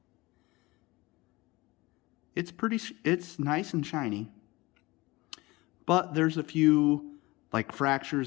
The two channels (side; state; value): right; quieter; 21.7 dB